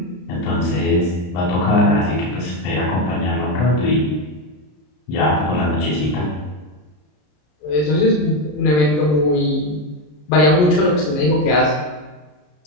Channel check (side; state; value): right; late; 33 ms